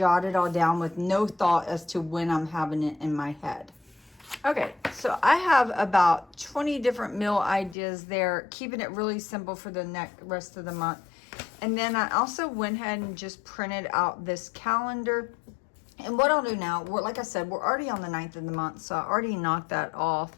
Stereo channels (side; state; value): right; drops out; at 7.8 s